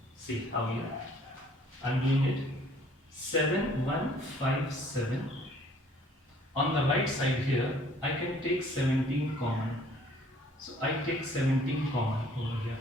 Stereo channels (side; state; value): both; normal; correlation 0.57